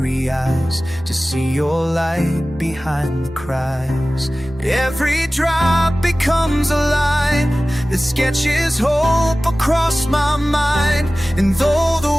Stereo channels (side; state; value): both; normal; correlation 0.97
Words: eyes to see your light behind the cries. Every drop becomes a line that sketches hope across my mind. And though